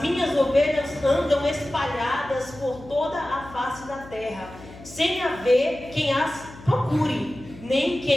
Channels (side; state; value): left; noise; hum, 18 dB below the sound